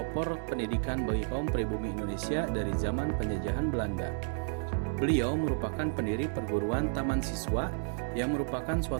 pendidikan bagi kaum pribumi Indonesia dari zaman penjajahan Belanda. Beliau merupakan pendiri perguruan Taman Siswa yang merupakan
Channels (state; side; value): silent; left; 57 dB below the other